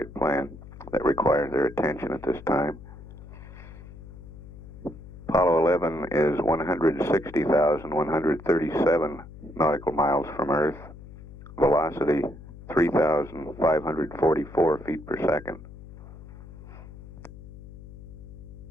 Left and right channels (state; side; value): noise; left; hum, 16 dB below the sound